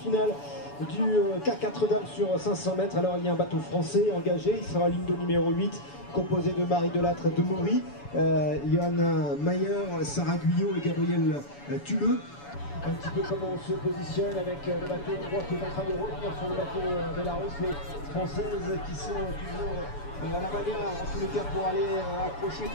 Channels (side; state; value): right; late; 7.0 ms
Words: du K4 dames sur 500 mètres, alors il y a un bateau français engagé, il sera ligne de numéro 8, composé de Marie Delattre de Maury, Johanna Mayer, Sarah Guyot et Gabriel Tuleux. Un petit peu comment on se positionne avec le bateau hongrois qui est en train de revenir sur le bateau Belarus, les Françaises qui sont toujours à la manière, en tous les cas, pour aller accrocher